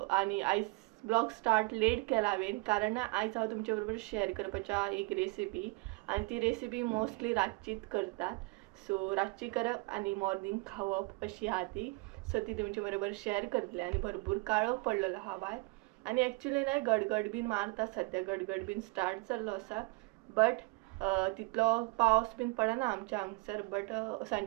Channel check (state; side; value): quieter; left; 26.7 dB